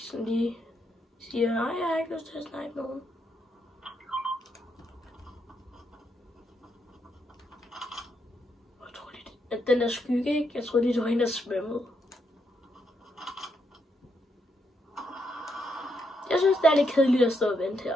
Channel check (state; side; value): normal; both; correlation 0.78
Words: lige siger, nej, jeg har ikke lyst til at snipe nogen. Jeg tror lige, at den der skygge, ikke? Jeg tror lige, det var hende, der svømmede. Jeg synes, det er lidt kedeligt at stå og vente